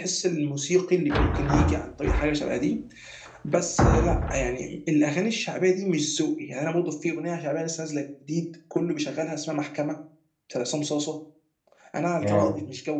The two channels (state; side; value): identical; both; correlation 1.00